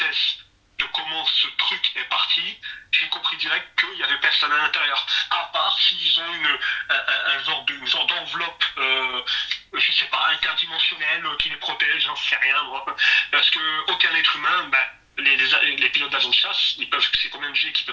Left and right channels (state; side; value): identical; both; correlation 1.00